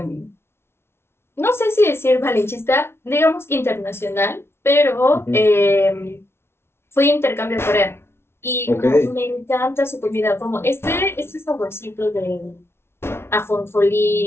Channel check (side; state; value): right; late; 0.12 ms